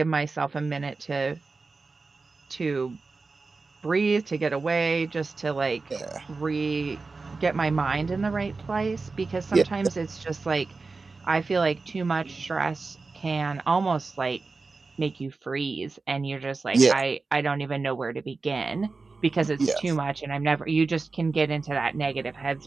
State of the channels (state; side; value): quieter; left; 4.0 dB